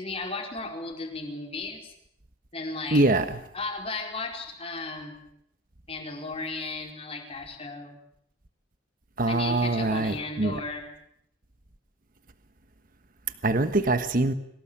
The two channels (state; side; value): normal; both; correlation 0.37